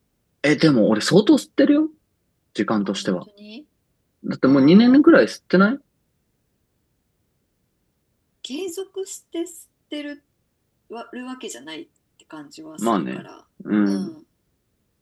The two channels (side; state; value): both; identical; correlation 1.00